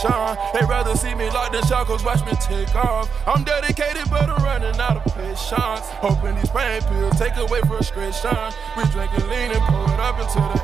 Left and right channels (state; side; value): quieter; left; 6.1 dB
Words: They rather see me locked in shackles, watch me take off. I'm dedicated, but I'm running out of patience. Hoping these pain pills take away frustration. We drinking lean and pour it up until the